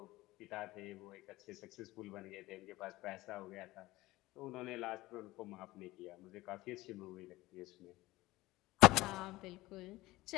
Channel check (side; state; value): right; quieter; 18.6 dB